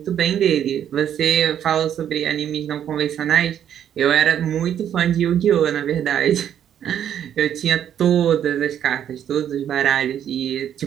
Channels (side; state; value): left; quieter; 9.7 dB